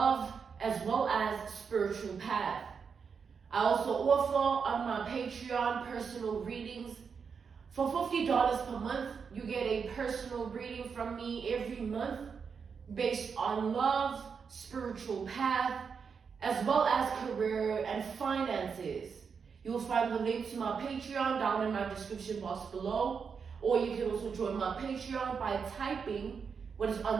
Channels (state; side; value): quieter; left; 6.0 dB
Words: as well as spiritual path. I also offer on my Patreon personal readings. For $50 per month, you get a personal reading from me every month based on love, spiritual path, as well as career and finances. You will find the link to my Patreon down in my description box below, or you can also join my Patreon by typing what is